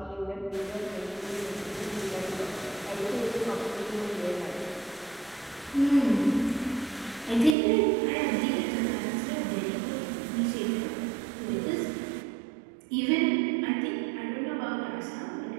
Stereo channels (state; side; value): drops out; left; at 7.6 s